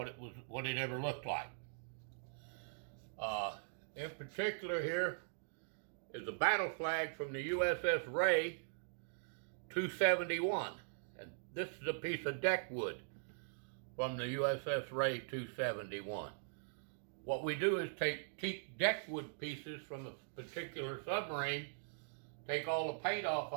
it ever looked like. In particular, here is a battle flag from the USS Ray 271, and this is a piece of deck wood from the USS Ray 271. What we do is take deck wood pieces from a particular submarine, take all the paint off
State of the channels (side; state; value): left; silent; digital silence